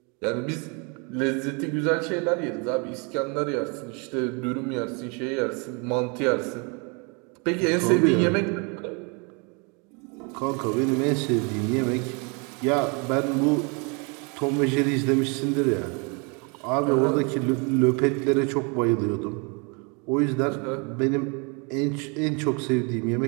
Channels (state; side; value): quieter; left; 33.0 dB